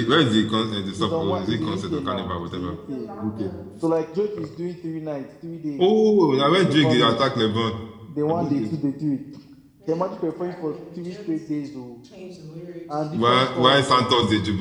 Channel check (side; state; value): both; identical; correlation 1.00